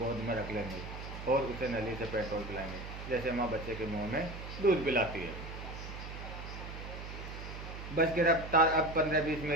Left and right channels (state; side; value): noise; right; hum, 9 dB below the sound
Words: में रख लेंगे और उसे नली से पेट्रोल पिलाएंगे, जैसे माँ बच्चे के मुंह में दूध पिलाती है। बस की रफ्तार अब 15-20